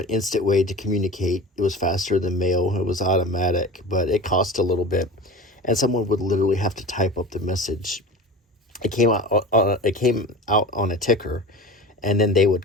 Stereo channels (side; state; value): both; normal; correlation 0.33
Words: instant way to communicate. It was faster than mail. It was automatic, but it cost a little bit, and someone would literally have to type up the message. It came out on a ticker, and then they